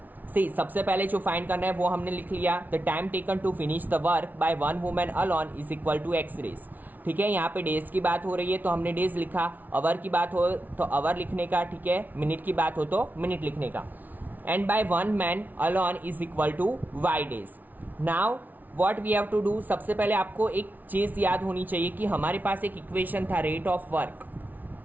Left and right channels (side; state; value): left; late; 0.081 ms